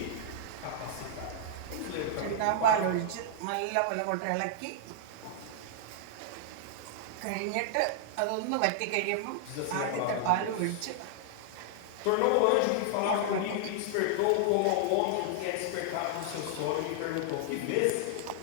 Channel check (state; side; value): different; both; correlation -0.01